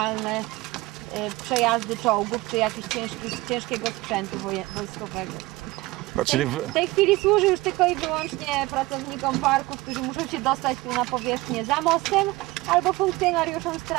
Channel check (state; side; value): quieter; left; 20.5 dB